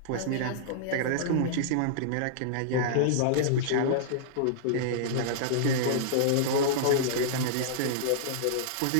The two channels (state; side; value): different; both; correlation -0.02